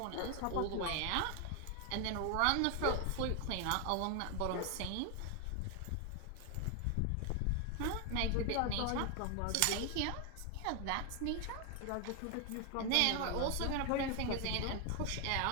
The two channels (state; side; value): different; both; correlation 0.01